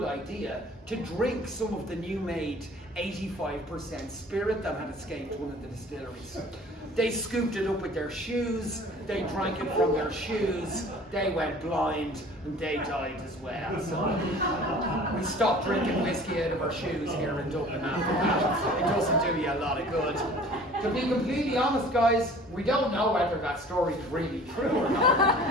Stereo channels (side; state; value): both; normal; correlation 0.47